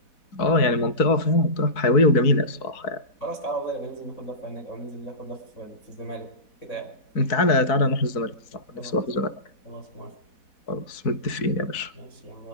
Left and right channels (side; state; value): right; late; 4.1 ms